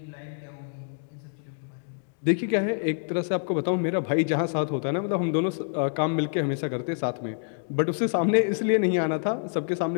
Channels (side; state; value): right; silent; digital silence